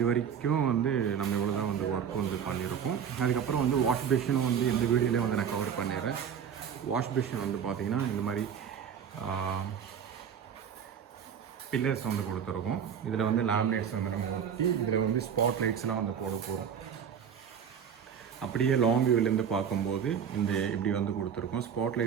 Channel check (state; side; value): quieter; left; 7.8 dB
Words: வரைக்கும் வந்து நம்ம இவ்வளோ தான் வந்து ஒர்க் வந்து பண்ணியிருக்கோம். அதுக்கப்புறம் வந்து வாஷ் பேஷனும் வந்து இந்த வீடியோலேயே வந்து நான் கவர் பண்ணிடுறேன். வாஷ் பேஷன் வந்து பார்த்திங்கன்னா இந்த மாதிரி பில்லர்ஸ் வந்து கொடுத்துருக்கோம். இதில் வந்து லேமினேட்ஸ் வந்து நம்ம ஊற்றி இதில் வந்து ஸ்பாட் லைட்ஸ்லாம் வந்து போட போகிறோம். அப்படியே லாங் வியூவிலேருந்து பார்க்கும்போது இந்த இப்படி வந்து கொடுத்துருக்கோம். ஸ்பாட்